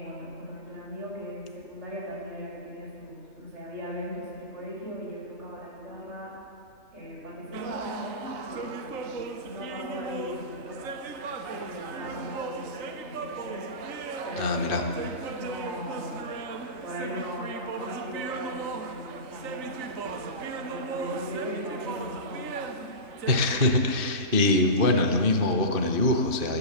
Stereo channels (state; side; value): late; left; 3.2 ms